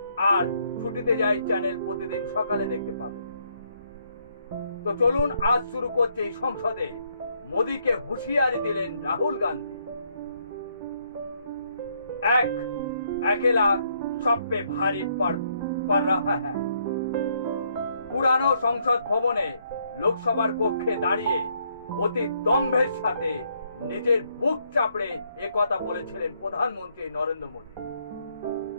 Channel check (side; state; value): both; inverted; correlation -0.72